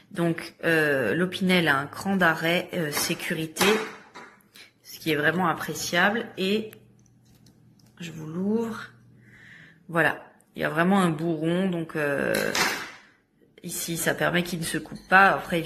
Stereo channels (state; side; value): identical; both; correlation 1.00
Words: Donc l'Opinel a un cran d'arrêt sécurité, ce qui est vraiment appréciable. Et je vous l'ouvre. Voilà, il y a vraiment un bourron, donc ici ça permet qu'il ne se coupe pas. Après